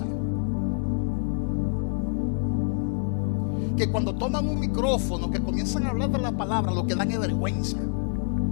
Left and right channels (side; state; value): right; silent; digital silence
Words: que cuando toman un micrófono, que comienzan a hablar de la palabra, lo que dan es vergüenza.